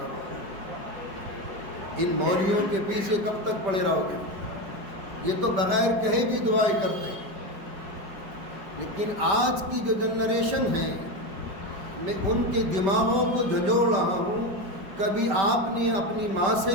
ان مولویوں کے پیچھے کب تک پڑے رہو گے؟ یہ تو بغیر کہے بھی دعائیں کرتے ہیں، لیکن آج کی جو جنریشن ہے، میں ان کے دماغوں کو جھنجھوڑ رہا ہوں۔ کبھی آپ نے اپنی ماں سے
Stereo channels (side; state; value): left; late; 5.1 ms